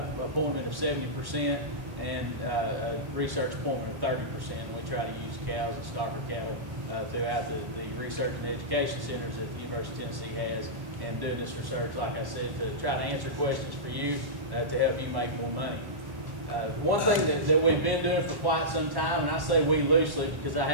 appointment of 70% and a research appointment of 30%. We try to use cows and stocker cattle throughout the research and education centers that the University of Tennessee has, and doing this research, like I said, to try to answer questions for you to help you make more money. One thing that we've been doing for quite some time, and I say we loosely because I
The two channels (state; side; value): late; left; 1.1 ms